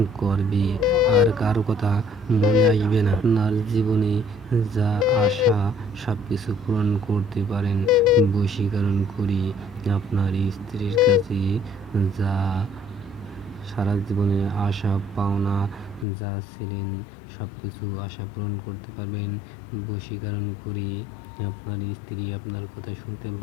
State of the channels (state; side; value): drops out; right; at 16.1 s